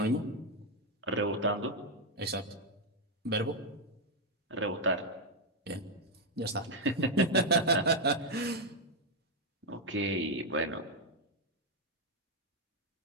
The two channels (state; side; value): normal; both; correlation 0.02